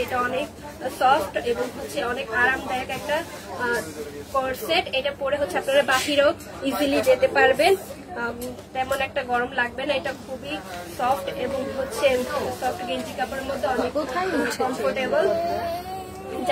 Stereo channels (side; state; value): both; identical; correlation 1.00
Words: এটা অনেক সফট এবং হচ্ছে অনেক আরামদায়ক একটা কর্সেট। এটা পরে হচ্ছে আপনারা বাহিরেও ইজিলি যেতে পারবেন, তেমন একটা গরম লাগবে না। এটা খুবই সফট এবং হচ্ছে সফট গেঞ্জি কাপড়ের মধ্যে অনেক কমফোর্টেবল।